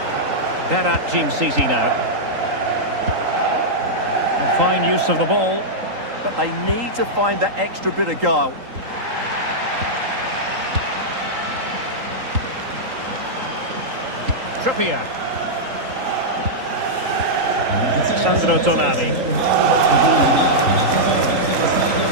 Berat Jim City now. A fine use of the ball. But they need to find that extra bit of guile. Trippier. Sandro Tonali.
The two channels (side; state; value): left; late; 3.8 ms